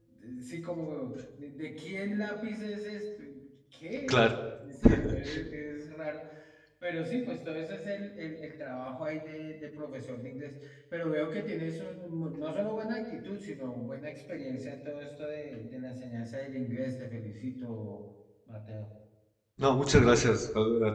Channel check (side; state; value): both; identical; correlation 1.00